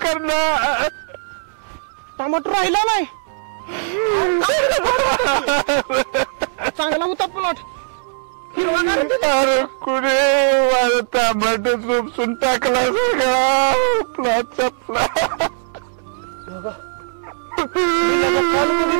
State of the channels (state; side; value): silent; left; digital silence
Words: करणार. टमाटो राहिला नाही चांगला होता प्लॉट अरे कुठे माझं टमाटो उपसून टाकला सगळा प्लॉटचा प्लॉट. मी लगा काल